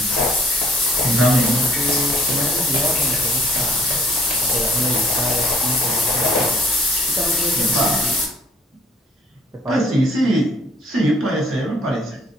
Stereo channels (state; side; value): normal; both; correlation 0.60